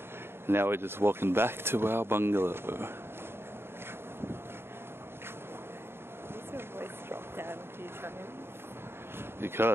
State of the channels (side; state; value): left; late; 0.11 ms